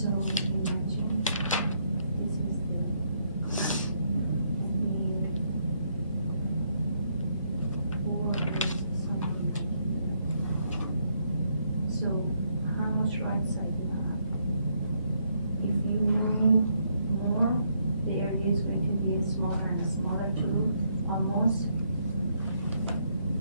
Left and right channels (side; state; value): both; inverted; correlation -0.74